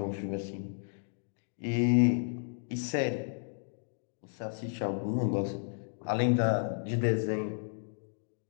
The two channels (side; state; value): right; silent; digital silence